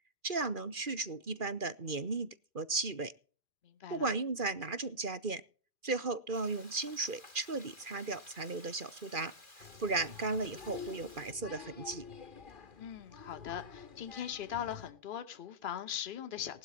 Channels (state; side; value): late; left; 2.4 ms